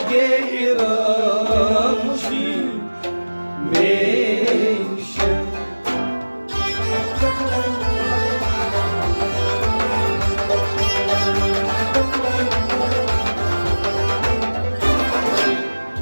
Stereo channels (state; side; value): inverted; both; correlation -1.00